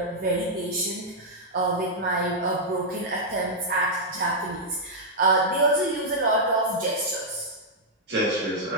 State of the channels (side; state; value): both; normal; correlation -0.06